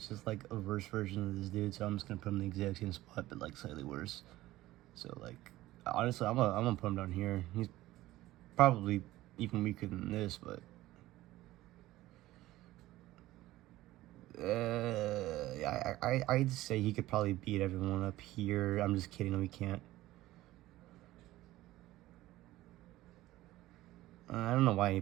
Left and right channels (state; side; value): quieter; left; 16.5 dB